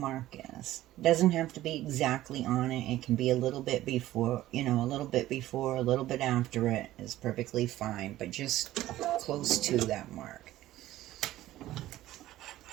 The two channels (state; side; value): quieter; left; 15.0 dB